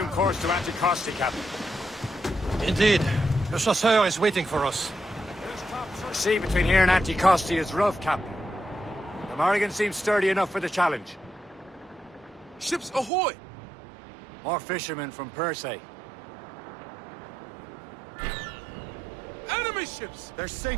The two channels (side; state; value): left; drops out; at 13.1 s